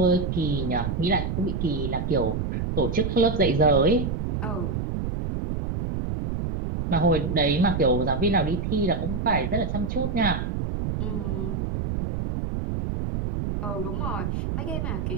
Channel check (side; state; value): right; noise; rumble, 2 dB below the sound